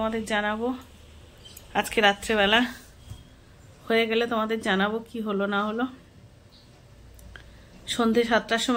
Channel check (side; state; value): both; identical; correlation 1.00